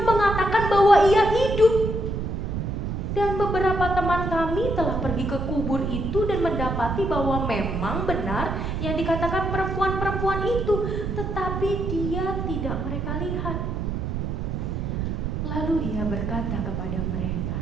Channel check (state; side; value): noise; right; rumble, 2 dB below the sound